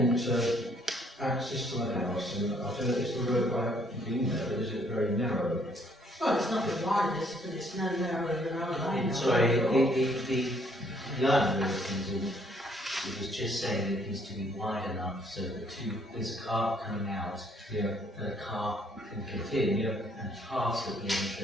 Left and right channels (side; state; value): both; normal; correlation 0.65